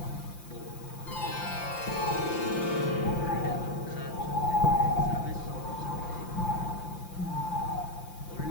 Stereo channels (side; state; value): right; late; 5.8 ms